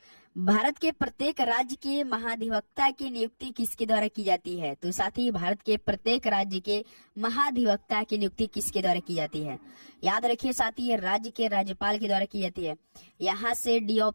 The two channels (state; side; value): inverted; both; correlation -1.00